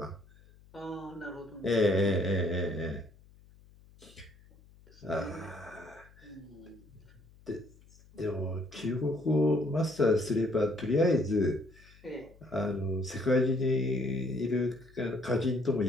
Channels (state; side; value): noise; left; hum, 25 dB below the sound